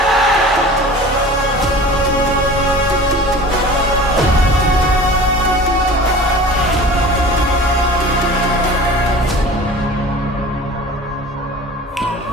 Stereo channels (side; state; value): both; normal; correlation 0.40